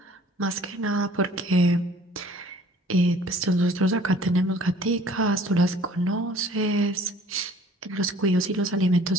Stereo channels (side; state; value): both; normal; correlation 0.53